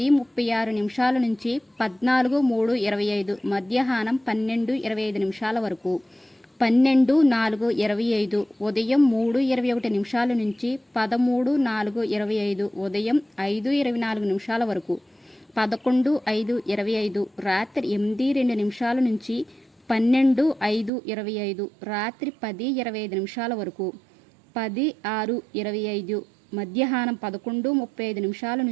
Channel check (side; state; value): left; drops out; at 20.9 s